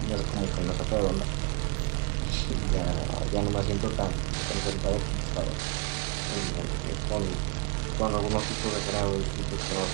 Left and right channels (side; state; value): left; quieter; 33.3 dB